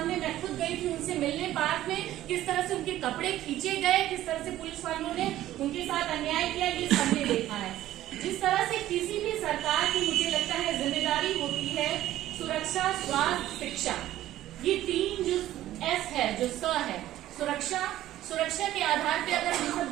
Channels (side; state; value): left; quieter; 13.9 dB